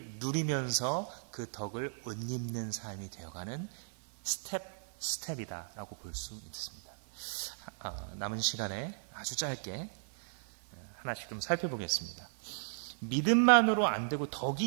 누리면서 그 덕을 옷입는 삶이 되어가는 스텝이다라고 볼 수 있습니다. 남은 시간에 아주 짧게 하나씩 좀 살펴보겠습니다. 믿음만으로 안 되고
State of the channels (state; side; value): silent; left; 54 dB below the other